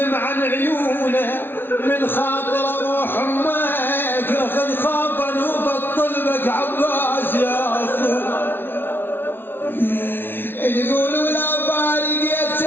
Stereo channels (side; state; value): right; late; 0.10 ms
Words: عن عيونه من خاطر روح امك خذ خافا وبطل بك عباس يا اخو تقول ولا